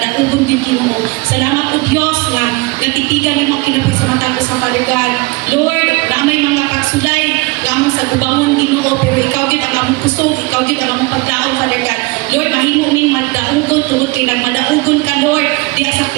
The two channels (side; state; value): left; quieter; 24.6 dB